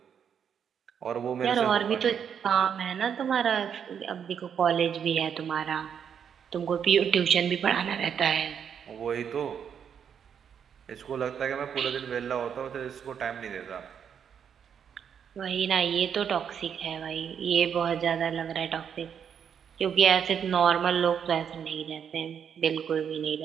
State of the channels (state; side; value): quieter; left; 7.9 dB